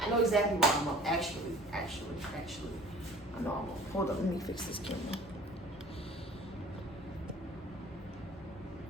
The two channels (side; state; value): both; normal; correlation 0.47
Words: know exactly why I'm up. Actually. I know I'm up. Hold up, let me fix this camera.